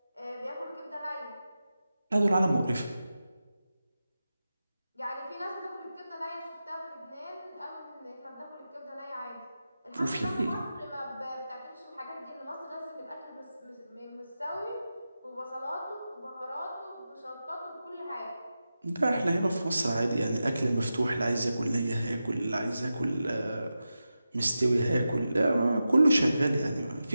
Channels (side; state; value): both; inverted; correlation -0.92